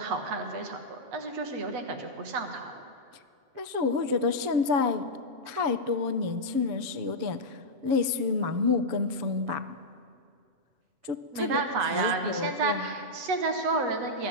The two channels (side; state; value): left; late; 7.1 ms